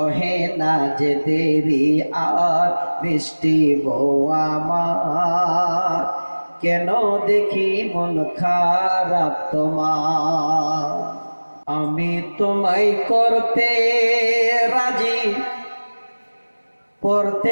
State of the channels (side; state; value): both; inverted; correlation -1.00